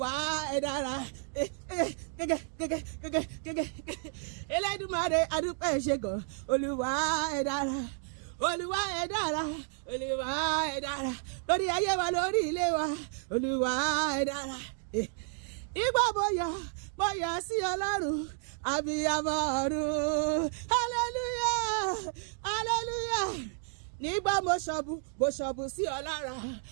ẹ dára gẹ́gẹ́ Elédùmarè àdúpẹ́ ṣe gan Olúwa ẹ dára Olúwa ẹ dára Olúwa ẹ dára lórí ayé wa lórí ilé wa Olúwa ẹ dára ìgbà mo yọ̀ sí Ọlọ́run abiyamọ ọ̀run hallelujah hallelujah nígbà mo ṣọ̀bù sí ọ lára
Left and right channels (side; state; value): left; silent; 57 dB below the other